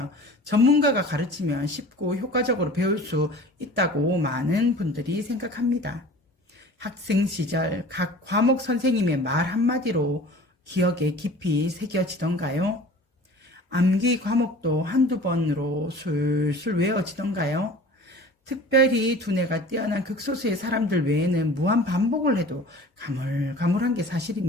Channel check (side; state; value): both; normal; correlation 0.43